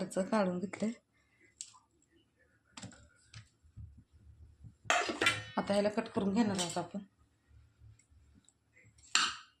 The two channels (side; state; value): both; identical; correlation 1.00